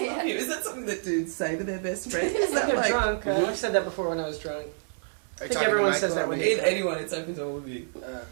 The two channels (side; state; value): left; silent; digital silence